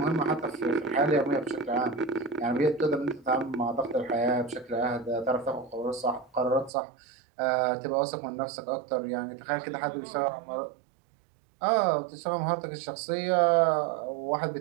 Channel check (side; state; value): left; drops out; at 6.7 s